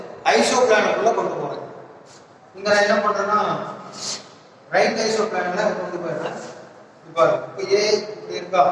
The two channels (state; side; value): identical; both; correlation 1.00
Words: ஐசோ பிளானுக்குள்ள கொண்டு போறேன். இங்க நான் என்ன பண்றேன்னா ரைட் ஐசோ பிளான்ல கொண்டு போயிடுறேன். இப்போ ஏ இப்படி இருக்கா,